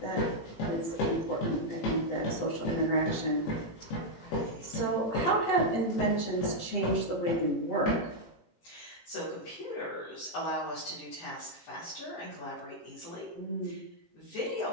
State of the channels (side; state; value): right; late; 18 ms